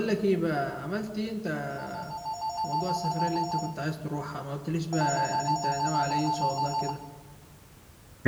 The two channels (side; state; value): both; identical; correlation 1.00